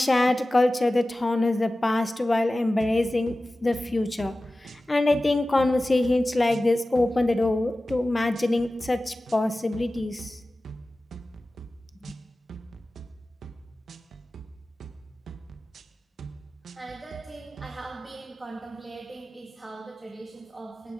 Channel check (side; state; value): both; normal; correlation 0.96